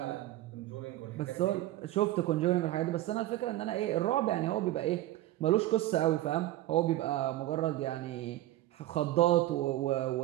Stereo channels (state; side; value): quieter; left; 15.3 dB